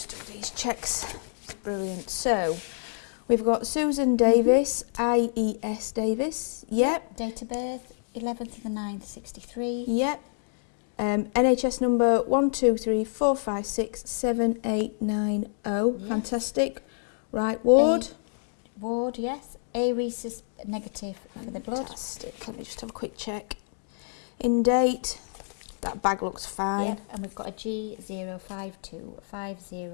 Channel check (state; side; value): silent; right; digital silence